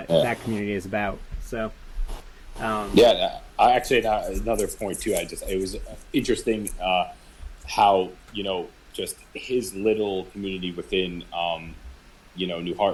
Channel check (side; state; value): both; identical; correlation 1.00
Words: that community is about. So I actually, another point too, it was interesting how just his little community within, New